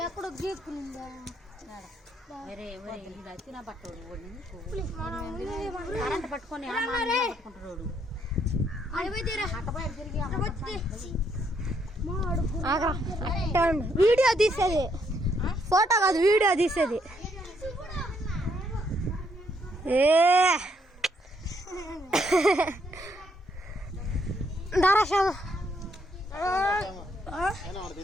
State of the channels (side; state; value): both; normal; correlation 0.72